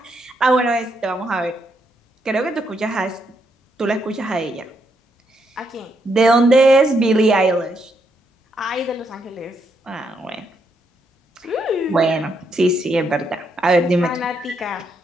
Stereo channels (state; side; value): normal; both; correlation 0.78